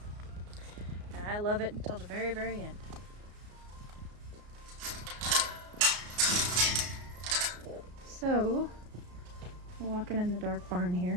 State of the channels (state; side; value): late; left; 33 ms